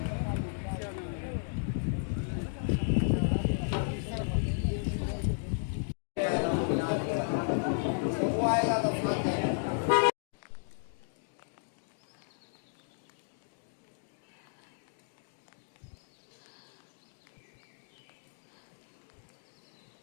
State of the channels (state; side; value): silent; right; digital silence